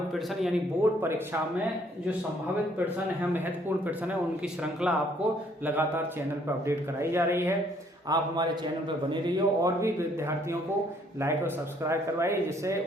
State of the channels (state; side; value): normal; both; correlation 0.65